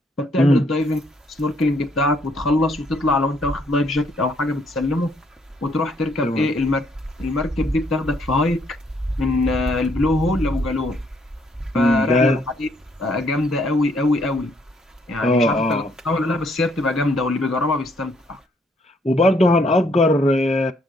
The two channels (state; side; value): normal; both; correlation 0.69